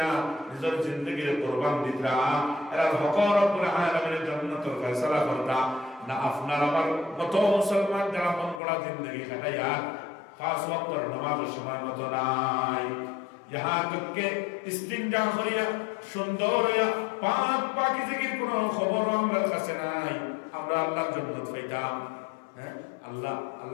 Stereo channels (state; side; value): drops out; right; at 8.6 s